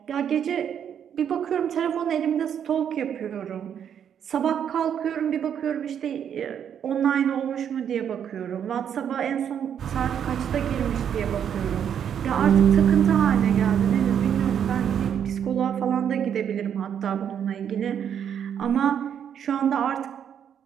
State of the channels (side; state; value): left; quieter; 8.7 dB